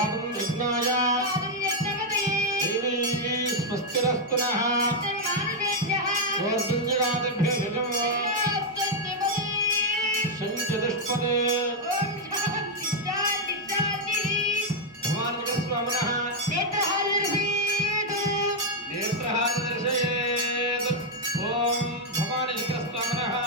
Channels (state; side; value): normal; both; correlation -0.01